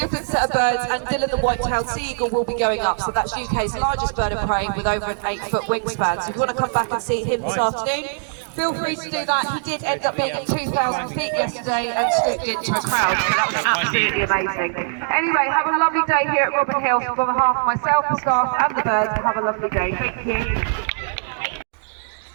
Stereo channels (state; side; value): silent; left; digital silence